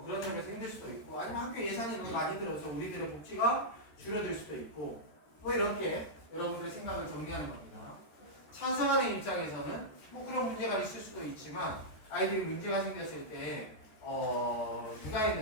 그런 점이 생길 수도 있고 아니면 학교 예산이 너무 많이 들어서 우리들의 복지가 줄어들 수도 있고 뭐 이렇게 여러분들의 생각을 정리하는 겁니다. 찬성하는 입장에서는 뭐 그런 문제가 있을 수도 있지만 아이들이 문제가 생겼을 때 누가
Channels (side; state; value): right; late; 13 ms